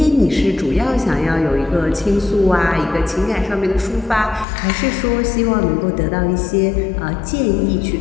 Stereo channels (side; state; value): right; drops out; at 4.5 s